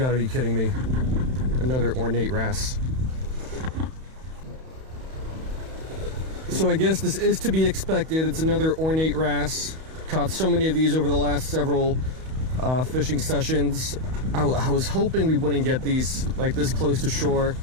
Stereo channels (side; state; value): left; late; 31 ms